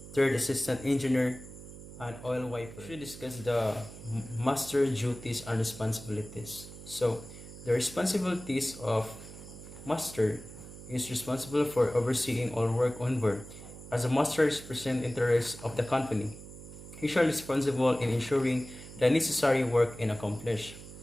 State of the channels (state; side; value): noise; right; hum, 15 dB below the sound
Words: Third Assistant Engineer, and Oil Wiper. We should discuss the master duties and responsibilities. So, the responsibilities of master is responsible for overseeing all work on board. As a master represents interests of the company, he shall be responsible in ensuring the necessary work is accomplished.